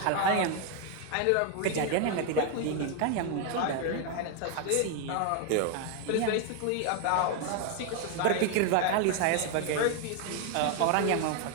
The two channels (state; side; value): different; both; correlation 0.01